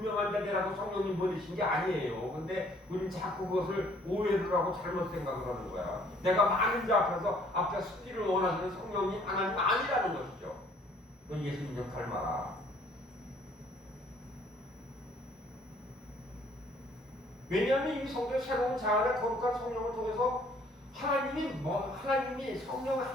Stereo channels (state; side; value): normal; both; correlation 0.60